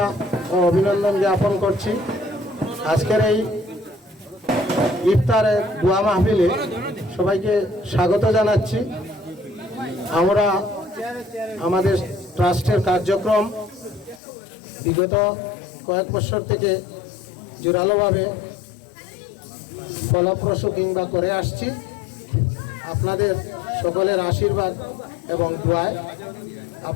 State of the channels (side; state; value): right; drops out; at 14.2 s